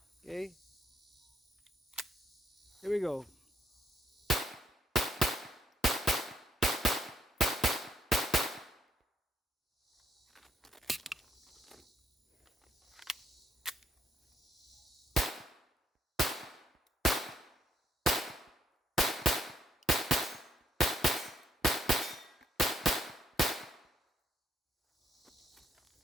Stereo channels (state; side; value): normal; both; correlation 0.72